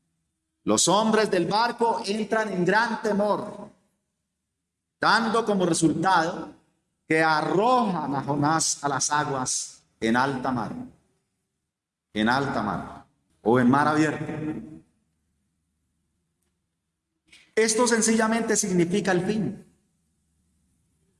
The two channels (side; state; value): both; identical; correlation 1.00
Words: Los hombres del barco entran en gran temor, dando como resultado que arrojan a Jonás a las aguas en alta mar. En alta mar o en mar abierto. Esto sencillamente significa el fin.